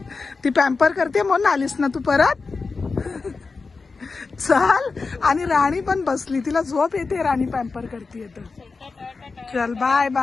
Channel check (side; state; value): right; quieter; 4.3 dB